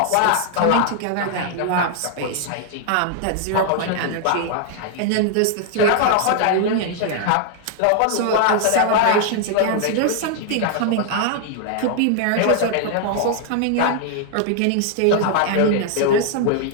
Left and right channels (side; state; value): both; different; correlation -0.01